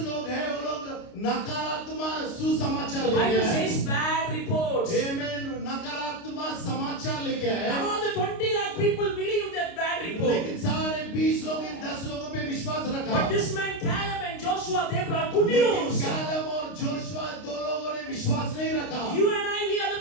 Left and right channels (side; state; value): right; late; 29 ms